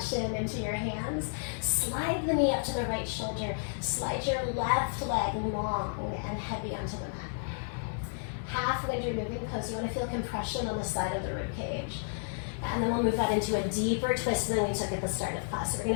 shin into your hands. Slide the knee up to the right shoulder. Slide your left leg long and heavy onto the mat. Half when you're moving pose, you want to feel compression on the side of the rib cage. And then we'll move that into a deeper twist than we took at the start of class. So we're going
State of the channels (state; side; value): silent; right; digital silence